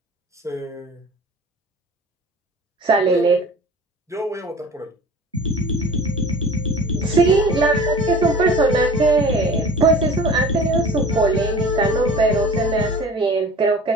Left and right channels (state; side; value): normal; both; correlation 0.42